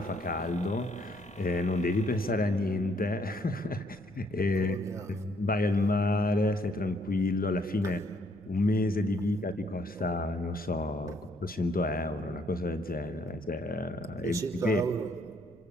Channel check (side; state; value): left; noise; rumble, 29 dB below the sound